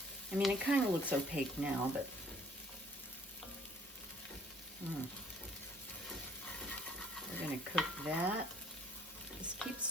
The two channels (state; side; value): normal; both; correlation 0.59